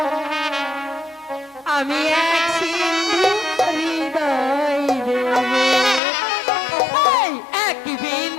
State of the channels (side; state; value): right; drops out; at 6.0 s